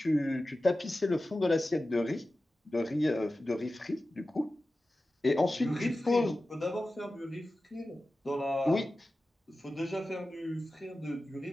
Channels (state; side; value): normal; both; correlation 0.94